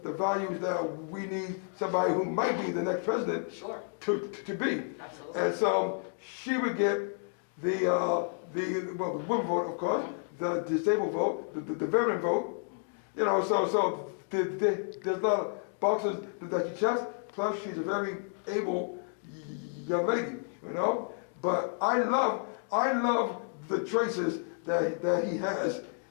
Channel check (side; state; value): right; silent; 57 dB below the other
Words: the values that we need somebody who might be the next president Sure. to be. Absolutely. And so she would get the women vote, of course, the disabled vote, the veteran vote. So there's a lot of boxes that she checks. Plus, she's a very able young lady, But I love the choices that he has